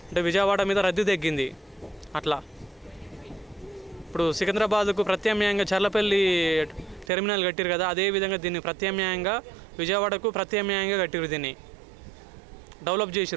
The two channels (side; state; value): left; drops out; at 7.1 s